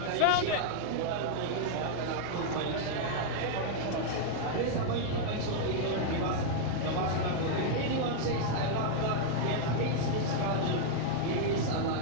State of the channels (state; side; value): different; both; correlation -0.01